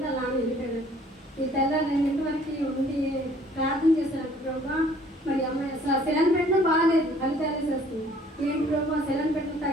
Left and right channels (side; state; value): both; normal; correlation 0.57